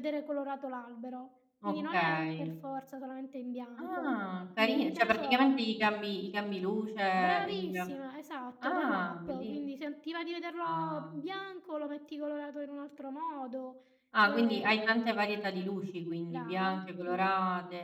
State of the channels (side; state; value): both; identical; correlation 1.00